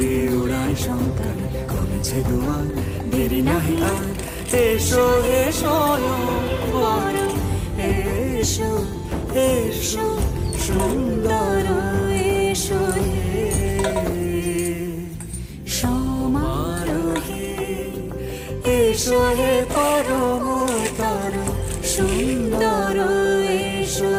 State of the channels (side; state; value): both; identical; correlation 1.00